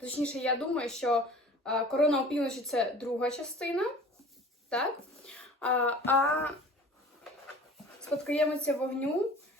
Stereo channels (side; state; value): both; normal; correlation 0.44